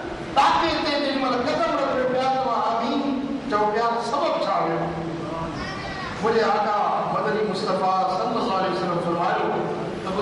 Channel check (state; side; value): identical; both; correlation 1.00